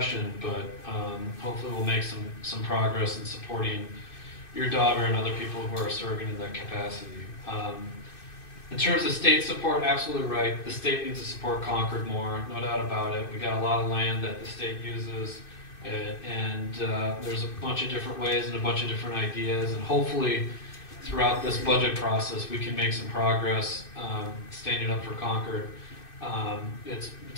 but hopefully we'll make some progress in supporting your daughter and other people who are serving in that capacity. In terms of state support, absolutely right. The state needs to support Concord more, no doubt about it. We got a lot of land that the state uses, and there's a bunch of different ways and a bunch of different ideas, and hopefully throughout this budget process we can make some progress standing up for Concord. It's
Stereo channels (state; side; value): late; right; 2.6 ms